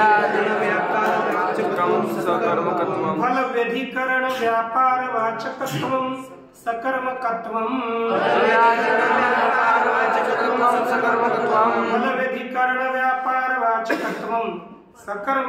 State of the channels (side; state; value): both; identical; correlation 1.00